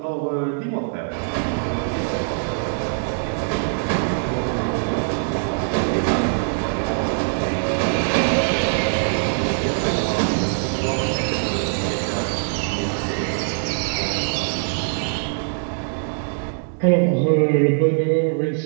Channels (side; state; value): left; silent; 62 dB below the other